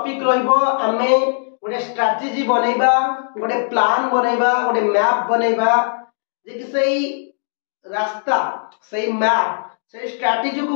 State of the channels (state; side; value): silent; right; digital silence